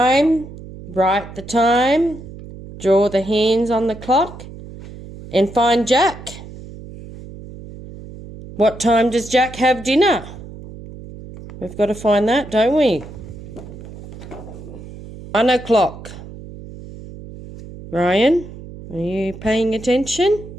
write the time, draw the hands on the clock, and find Jack. What time does Jack have dinner? We've got to find that, don't we? 1 o'clock. Ryan, are you paying attention?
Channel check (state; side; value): noise; right; hum, 15 dB below the sound